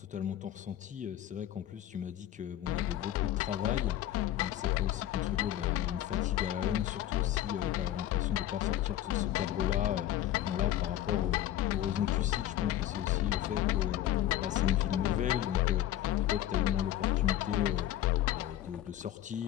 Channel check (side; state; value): right; quieter; 12.7 dB